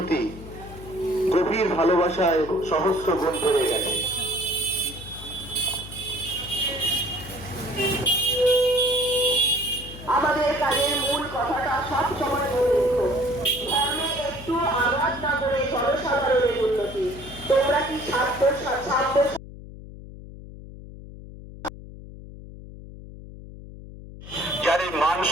গভীর ভালোবাসায় সহস্র গুণ বেড়ে গেছে। আমাদের কাজের মূল কথাটা সব সময় মনে রেখো, ধর্মে একটু আঘাত না করে জনসাধারণের উন্নতি। তোমরা কি ছাত্র যার এই মান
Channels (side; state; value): left; noise; hum, 15 dB below the sound